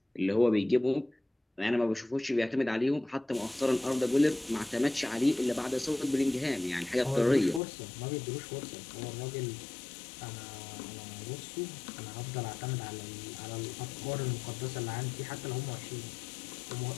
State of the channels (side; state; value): right; drops out; at 7.6 s